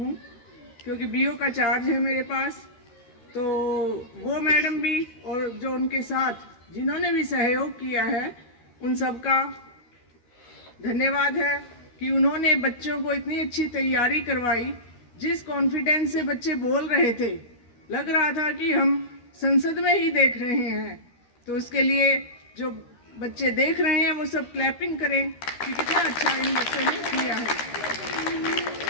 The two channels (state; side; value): late; right; 13 ms